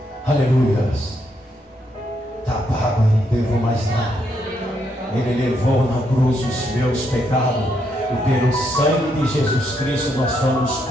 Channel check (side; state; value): both; normal; correlation 0.77